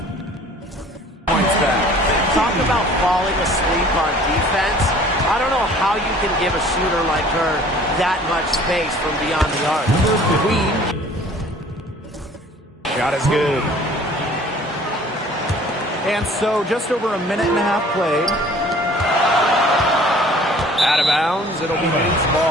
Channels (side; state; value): both; normal; correlation 0.51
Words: points back. Talk about falling asleep on defense. I don't know how you can give a shooter like her that much space from beyond the arc. Queen. Shot is good. And so just over a minute and a half played. Out of bounds. It'll be Lynx